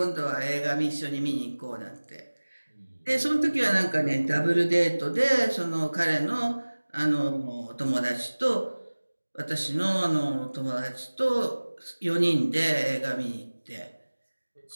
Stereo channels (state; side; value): inverted; both; correlation -1.00